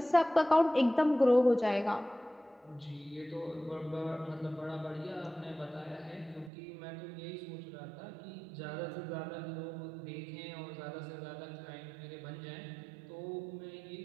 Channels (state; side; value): drops out; left; at 6.5 s